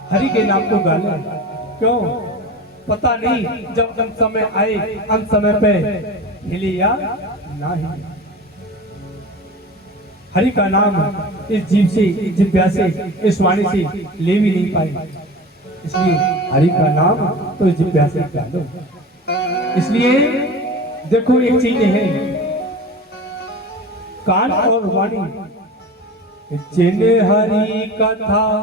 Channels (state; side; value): normal; both; correlation 0.34